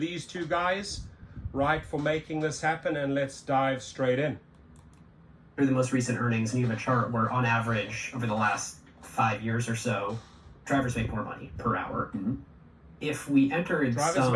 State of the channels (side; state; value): both; identical; correlation 1.00